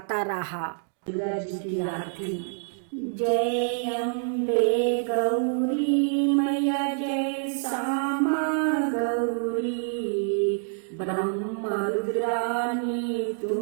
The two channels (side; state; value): left; silent; digital silence